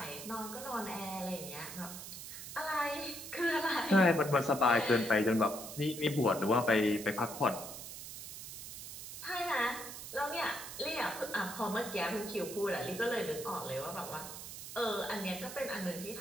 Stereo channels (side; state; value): right; noise; hiss, 10 dB below the sound